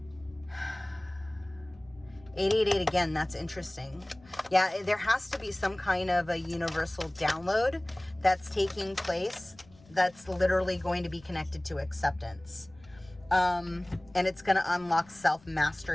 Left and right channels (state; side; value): noise; left; rumble, 26 dB below the sound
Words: 888 again, that's interesting. Yeah, there has to be some kind of a universal download that's taking place that's literally going to be connected to acceptance. And it's going to unlock